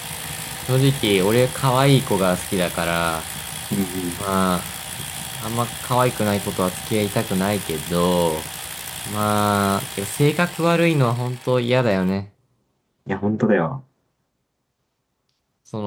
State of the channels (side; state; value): both; identical; correlation 1.00